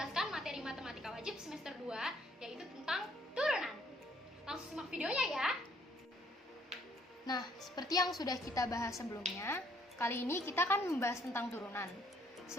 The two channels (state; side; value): normal; both; correlation 0.64